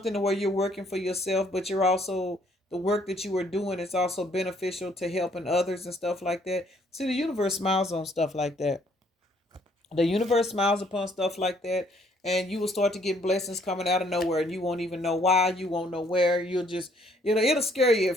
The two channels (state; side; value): normal; both; correlation 0.65